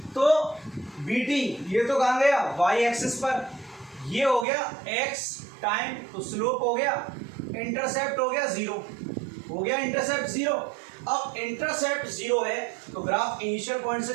तो BT ये तो कहाँ गया? Y एक्सिस पर। ये हो गया X टाइम, तो स्लोप हो गया, इंटरसेप्ट हो गया 0, हो गया इंटरसेप्ट 0। अब इंटरसेप्ट 0 है तो ग्राफ इनिशियल पॉइंट से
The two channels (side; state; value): left; drops out; at 4.5 s